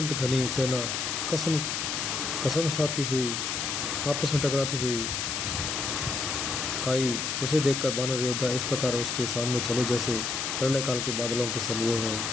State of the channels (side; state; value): left; noise; hiss, 2 dB below the sound